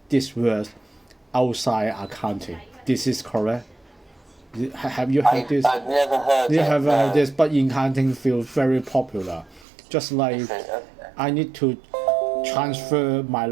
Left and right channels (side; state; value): left; drops out; at 9.7 s